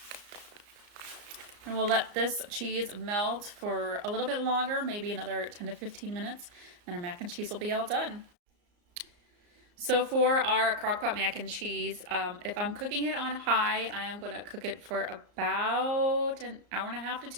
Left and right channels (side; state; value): left; late; 34 ms